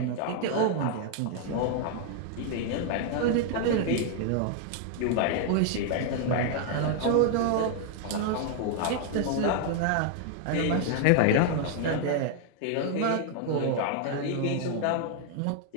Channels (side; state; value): both; different; correlation 0.00